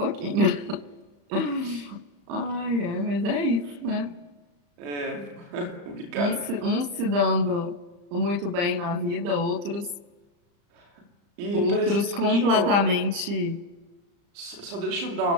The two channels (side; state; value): left; late; 35 ms